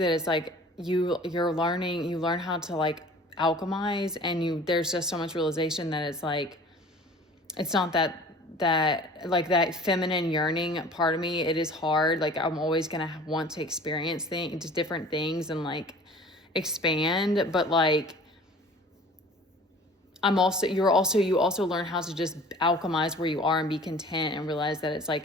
is like, you learn how to like alchemize, and there's just so much realization that it's like, it's not that like that feminine yearning part of me, it is hard. Like I'm always gonna want to experience just different things and like expand, but like you also learn how to just alchemize where you are and be content and realize that it's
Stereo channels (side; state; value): both; normal; correlation 0.46